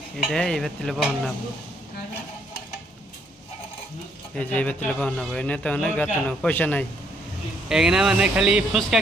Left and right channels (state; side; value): normal; both; correlation 0.70